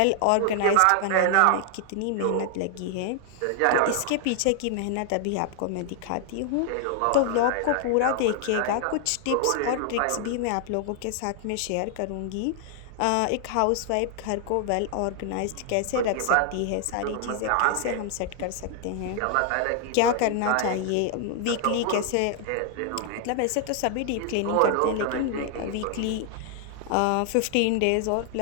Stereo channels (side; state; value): both; different; correlation 0.00